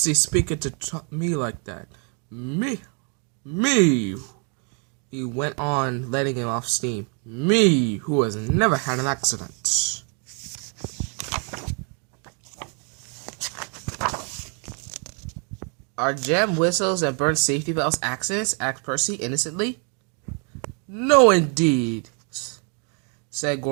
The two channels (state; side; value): quieter; left; 39.4 dB